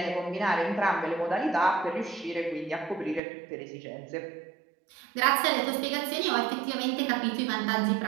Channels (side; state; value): left; drops out; at 3.2 s